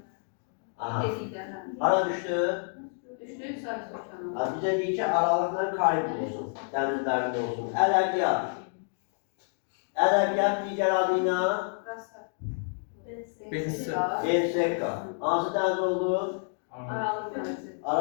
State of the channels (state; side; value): silent; right; digital silence